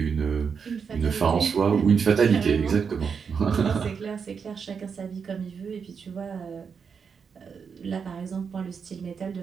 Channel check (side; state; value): left; quieter; 6.2 dB